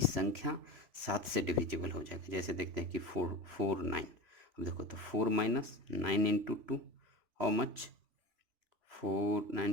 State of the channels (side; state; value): left; late; 3.0 ms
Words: संख्या 7 से डिविजिबल हो जाएगी। जैसे देखते हैं कि 4 9। अब देखो तो 4 माइनस 9 इंटू 2 हाउ मच, 4